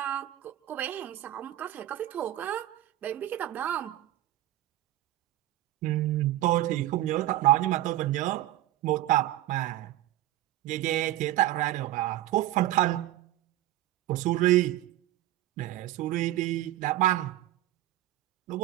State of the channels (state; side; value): quieter; left; 14.7 dB